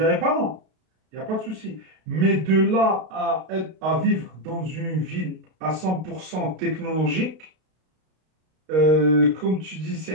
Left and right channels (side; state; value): left; late; 32 ms